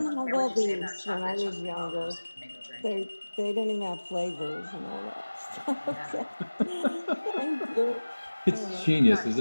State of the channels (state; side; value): inverted; both; correlation -1.00